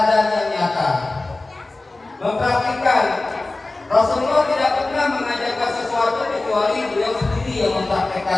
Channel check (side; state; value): right; quieter; 3.1 dB